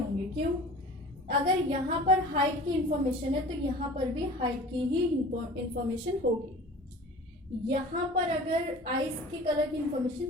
क्यों? अगर यहाँ पर हाइट की इंफॉर्मेशन है तो यहाँ पर भी हाइट की ही इंफॉर्मेशन होगी। यहाँ पर अगर आइस की कलर की इंफॉर्मेशन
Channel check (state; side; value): normal; both; correlation 0.41